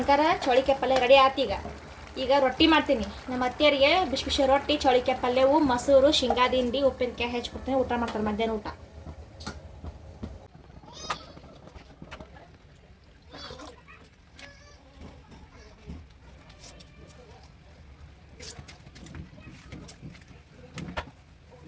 ಚೌಳಿಕಾಯಿ ಪಲ್ಯ ರೆಡಿ ಆಯ್ತು ಈಗ ರೊಟ್ಟಿ ಮಾಡ್ತೀನಿ ನಮ್ಮ ಅತ್ತೆಯರಿಗೆ ಬಿಸಿ ಬಿಸಿ ರೊಟ್ಟಿ ಚೌಳಿಕಾಯಿ ಪಲ್ಯವು ಮೊಸರು ಶೇಂಗಾ ದಿಂಡಿ ಉಪ್ಪಿನಕಾಯಿ ಹೆಚ್ಚಿಕೊಡ್ತೀನಿ ಊಟ ಮಾಡ್ತಾರೆ ಮಧ್ಯಾಹ್ನ ಊಟ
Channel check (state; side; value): identical; both; correlation 1.00